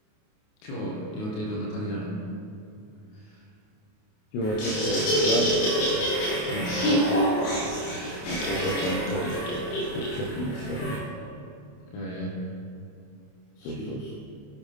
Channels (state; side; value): late; right; 28 ms